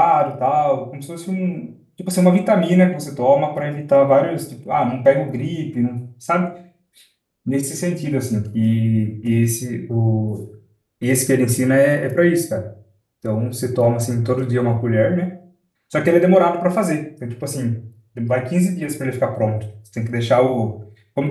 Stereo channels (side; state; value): both; identical; correlation 1.00